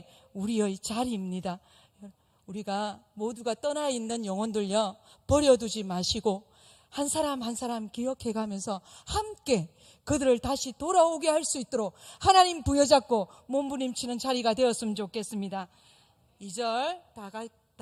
우리의 자리입니다. 우리가 모두가 떠나 있는 영혼들요, 버려두지 마시고 한 사람 한 사람 기억해가면서 함께 그들을 다시 돌아오게 할 수 있도록 하나님 부여잡고 몸부림치는 자리가 되었으면 좋겠습니다. 2절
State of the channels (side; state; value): both; identical; correlation 1.00